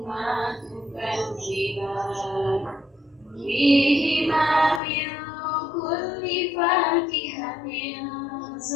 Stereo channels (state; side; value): drops out; right; at 4.8 s